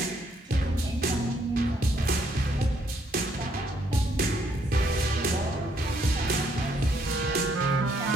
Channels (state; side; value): normal; both; correlation 0.70